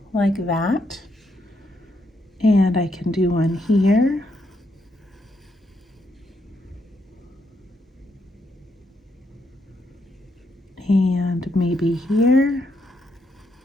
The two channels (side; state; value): both; normal; correlation 0.77